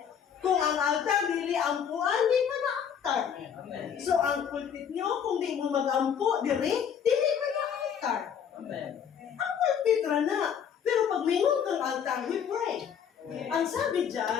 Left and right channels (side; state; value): right; quieter; 8.0 dB